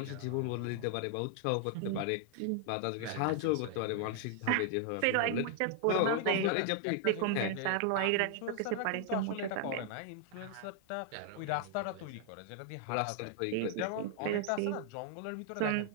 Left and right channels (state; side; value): different; both; correlation 0.00